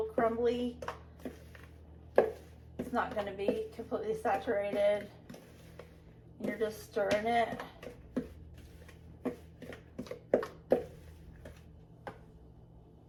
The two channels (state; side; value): identical; both; correlation 1.00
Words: crumbly. It's not going to be completely saturated. You're just stirring it.